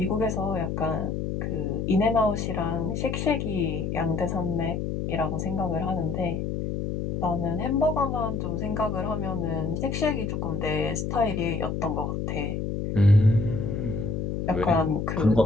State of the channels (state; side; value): noise; left; hum, 2 dB below the sound